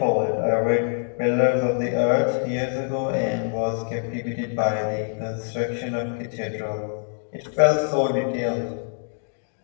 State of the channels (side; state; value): right; silent; digital silence